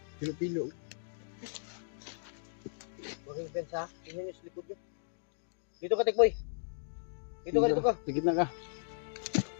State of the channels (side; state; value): right; silent; digital silence